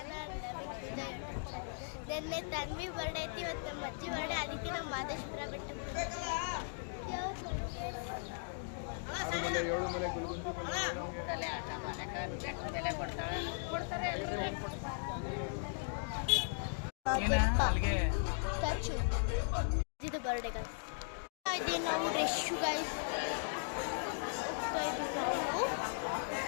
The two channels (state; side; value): silent; right; digital silence